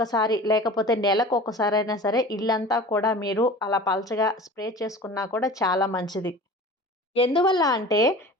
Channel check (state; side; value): normal; both; correlation 0.39